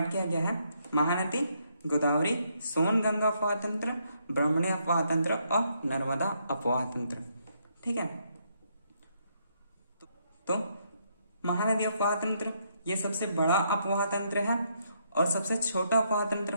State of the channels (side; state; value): both; inverted; correlation -0.75